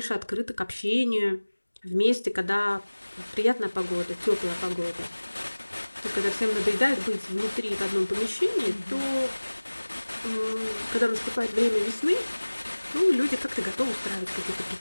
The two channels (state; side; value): inverted; both; correlation -1.00